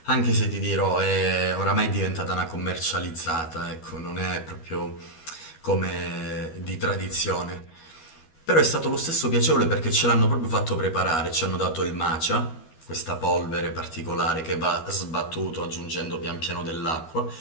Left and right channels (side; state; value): right; late; 12 ms